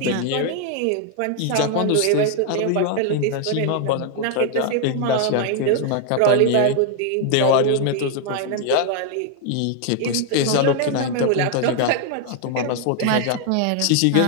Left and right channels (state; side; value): different; both; correlation 0.00